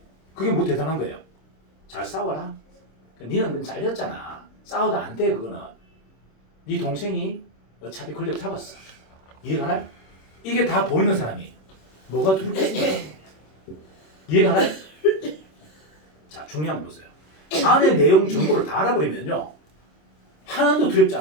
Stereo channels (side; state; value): right; late; 26 ms